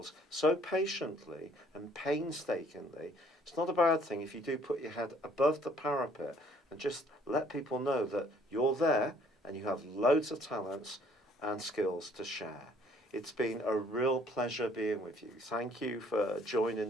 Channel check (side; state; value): both; normal; correlation 0.60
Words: so patiently and painstakingly. It's not a bad thing if you do put your head above the parapet and just let people know that you're there and you have loads of talents and skills to share. It's been a real pleasure being with you. Thank you for